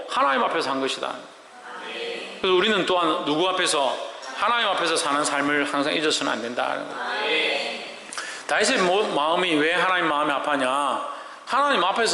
하나님 앞에서 한 것이다. 그래서 우리는 또한 누구 앞에서? 하나님 앞에서 사는 삶을 항상 잊어서는 안 된다. 다윗의 마음이 왜 하나님 마음이 아파냐? 하나님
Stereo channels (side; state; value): both; identical; correlation 1.00